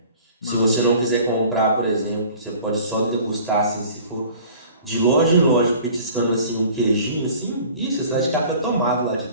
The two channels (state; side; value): inverted; both; correlation -0.47